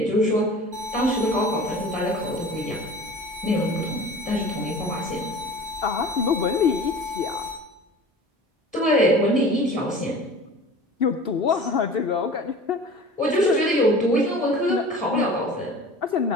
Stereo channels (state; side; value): normal; both; correlation 0.40